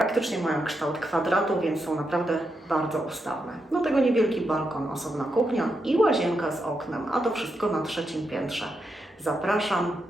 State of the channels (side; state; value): both; normal; correlation 0.84